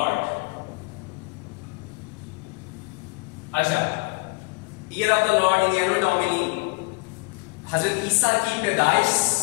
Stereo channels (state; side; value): quieter; right; 28.5 dB